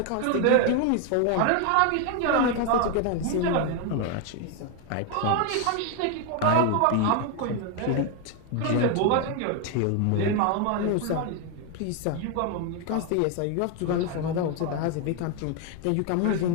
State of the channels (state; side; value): different; both; correlation 0.01